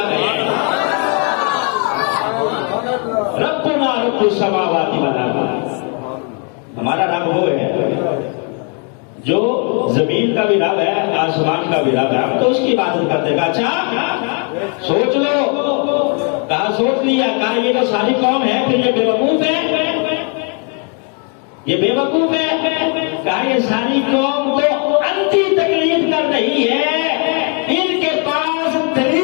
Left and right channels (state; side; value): quieter; right; 39.0 dB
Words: ہے. ربنا رب السماوات والارض، ہمارا رب وہ ہے جو زمین کا بھی رب ہے آسمان کا بھی رب ہے، ہم تو اس کی عبادت کرتے. کہا اچھا سوچ لو. کہا سوچ لیا. کہا یہ جو ساری قوم ہے پھر یہ بے وقوف ہے، یہ بے وقوف ہے. کہا یہ ساری قوم تو انتی تقلید کر رہی ہے، ان کے پاس